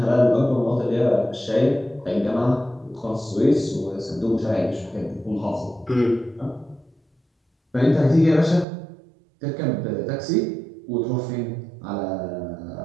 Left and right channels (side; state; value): left; drops out; at 8.7 s